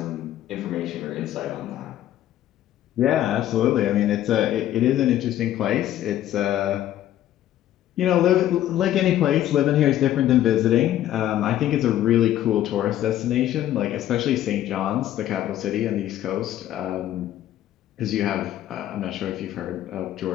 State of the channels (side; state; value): right; quieter; 12.5 dB